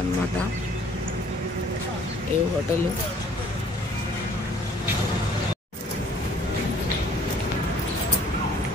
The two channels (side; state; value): both; normal; correlation 0.55